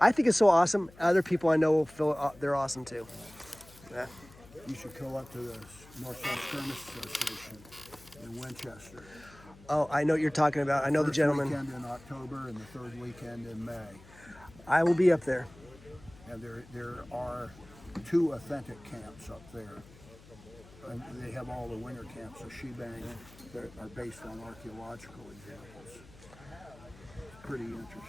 I think it's so awesome. Other people I know will feel they're awesome too. Yeah. You should go up to the North South Skirmish Association in Winchester. Oh, I know what you're talking about. I know the First gentleman. weekend in October and the third weekend in May. I will be up there. And there are 2 authentic camps up there. And they have all the winter camps, the shebang, that are based on archaeological examples. Pretty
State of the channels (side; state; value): left; noise; hum, 22 dB below the sound